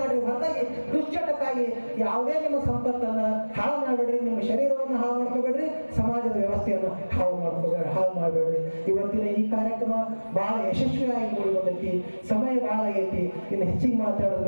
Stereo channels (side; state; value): both; inverted; correlation -1.00